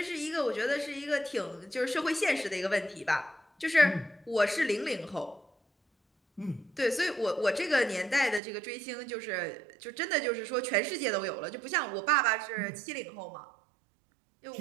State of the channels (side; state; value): left; drops out; at 8.4 s